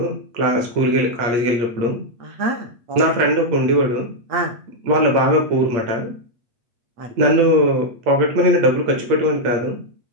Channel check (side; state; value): left; late; 8.7 ms